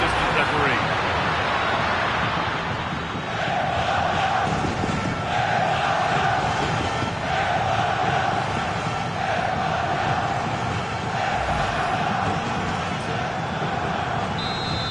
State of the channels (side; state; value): both; identical; correlation 1.00